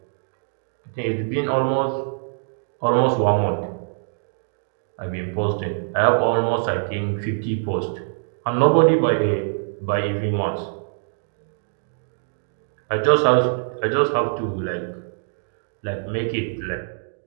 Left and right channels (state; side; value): silent; left; digital silence